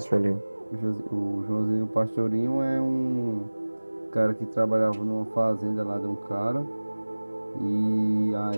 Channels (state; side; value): inverted; both; correlation -1.00